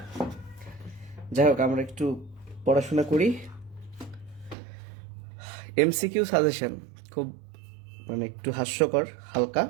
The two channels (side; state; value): left; drops out; at 4.5 s